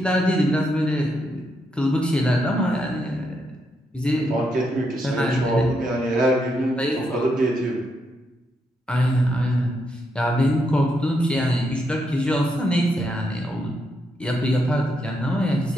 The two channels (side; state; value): both; normal; correlation 0.80